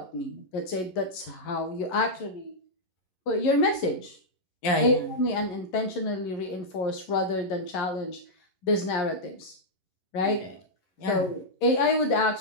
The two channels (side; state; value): right; late; 11 ms